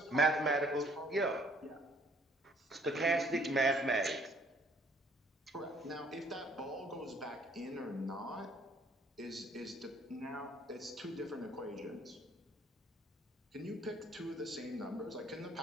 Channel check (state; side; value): normal; both; correlation 0.60